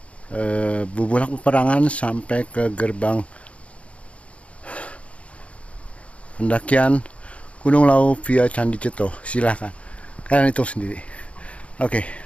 Bubulak Peperangan sampai ke gerbang pendakian Gunung Lawu via Candi Ceto. Silahkan kalian hitung sendiri. Oke,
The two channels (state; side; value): late; right; 0.063 ms